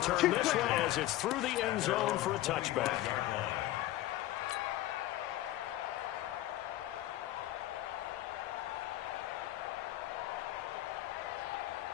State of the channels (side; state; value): right; quieter; 15.2 dB